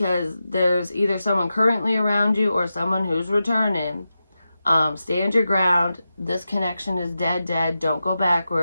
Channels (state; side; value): inverted; both; correlation -0.91